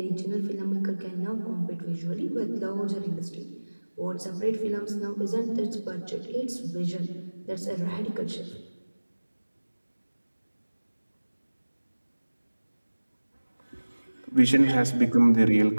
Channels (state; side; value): inverted; both; correlation -1.00